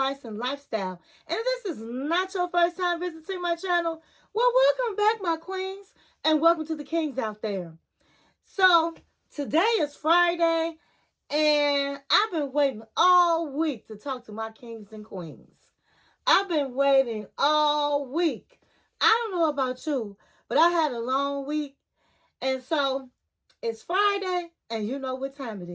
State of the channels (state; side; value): identical; both; correlation 1.00